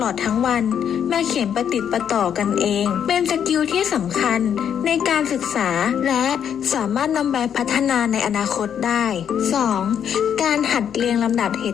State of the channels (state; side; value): quieter; right; 8.6 dB